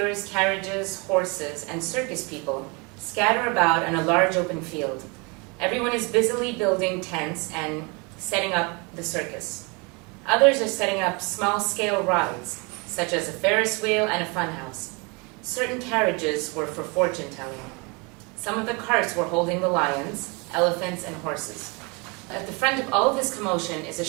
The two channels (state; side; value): quieter; left; 29.8 dB